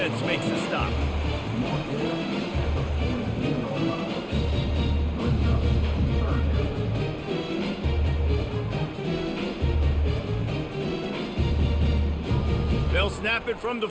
makes the stop. They'll snap it from the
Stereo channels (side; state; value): both; identical; correlation 1.00